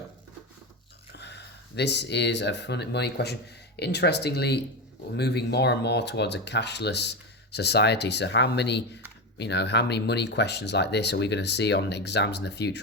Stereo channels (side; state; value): both; normal; correlation 0.17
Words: this is a fun money question. Interestingly, we're moving more and more towards a cashless society. So how many money questions like this are we going to see on exams in the